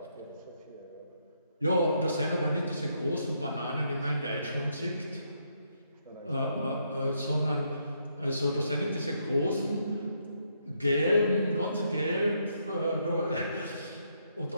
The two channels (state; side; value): inverted; both; correlation -0.76